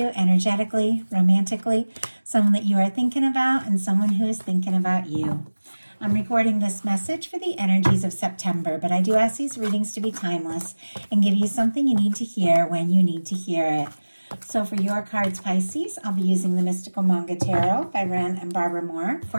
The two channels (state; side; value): inverted; both; correlation -1.00